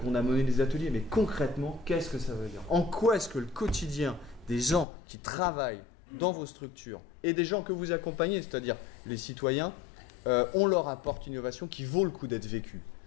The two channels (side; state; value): right; drops out; at 4.9 s